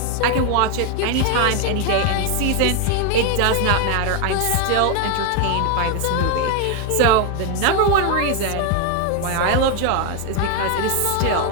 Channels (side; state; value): both; different; correlation 0.01